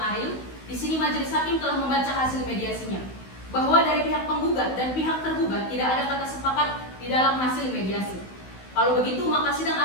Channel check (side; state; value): right; late; 16 ms